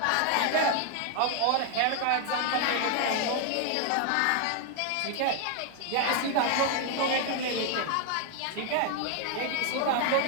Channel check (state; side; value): different; both; correlation 0.01